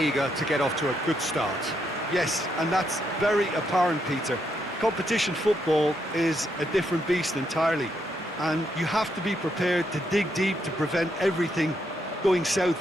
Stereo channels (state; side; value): normal; both; correlation 0.78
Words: to get off to a good start. Yes, and that's very apparent, Peter. Competition football is a different beast entirely, and you have to be prepared to dig deep to prevent everything going south